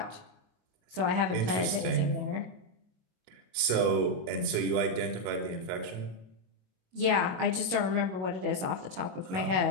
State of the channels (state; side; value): late; left; 21 ms